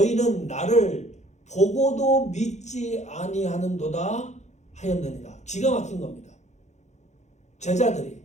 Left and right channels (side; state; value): right; late; 0.33 ms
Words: 나를 보고도 믿지 아니하는도다 하였느니라. 기가 막힌 겁니다. 제자들이